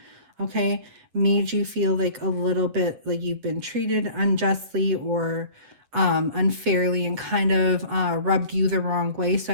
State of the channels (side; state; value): left; late; 8.1 ms